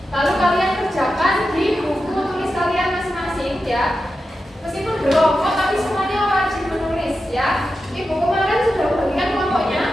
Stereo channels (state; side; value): normal; both; correlation 0.90